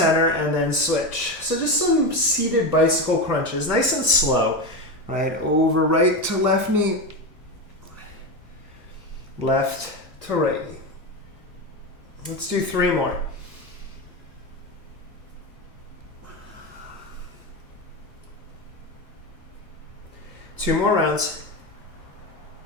and then switch. So just some seated bicycle crunches, nice and slow. Right, over right to left knee, left to right knee. Let's do 3 more. Two more rounds.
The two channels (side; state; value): both; normal; correlation 0.17